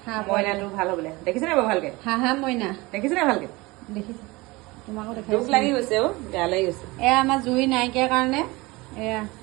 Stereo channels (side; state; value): left; quieter; 22.6 dB